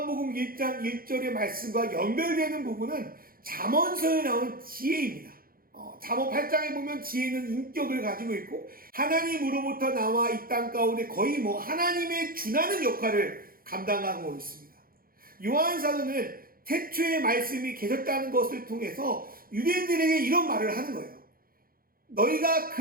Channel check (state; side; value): late; left; 0.42 ms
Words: 1장 1절의 말씀과 연결되는 부분은 잠언서에 나오는 지혜입니다. 잠언 8장에 보면 지혜는 인격을 가지고 있고, 하나님으로부터 나와 이 땅 가운데 거의 하나님의 준하는 역할을 감당하고 있습니다. 요한 사도는 태초에 말씀이 계셨다는 것을 통해서 유대인들에게 이런 말을 하는 거예요. 너희가